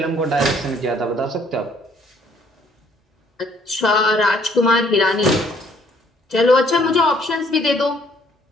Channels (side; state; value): both; normal; correlation 0.63